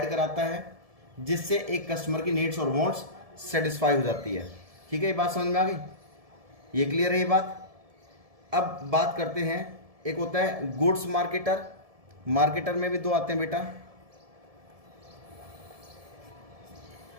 कराता है जिससे एक कस्टमर की नीड्स और वांट्स सेटिस्फाई हो जाती है। ठीक है, ये बात समझ में आ गई? ये क्लियर है ये बात? अब बात करते हैं, एक होता है गुड्स मार्केटर। मार्केटर में भी दो आते हैं बेटा।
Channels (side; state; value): left; late; 1.7 ms